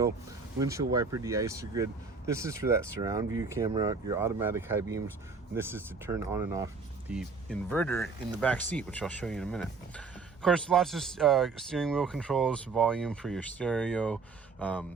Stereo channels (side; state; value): left; quieter; 4.6 dB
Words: windshield wiper de-icer grid. This is for that surround view camera, your automatic high beams, and this is to turn on and off the inverter in the back seat, which I'll show you in a minute. Of course, lots of steering wheel controls, volume for your stereo,